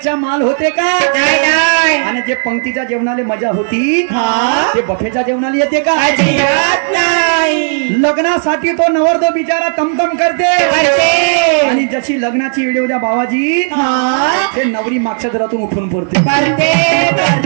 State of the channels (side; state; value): left; silent; digital silence